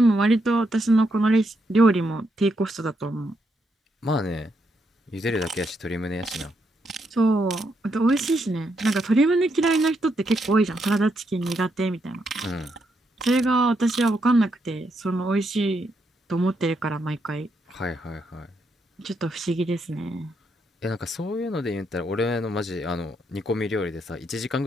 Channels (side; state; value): both; normal; correlation 0.79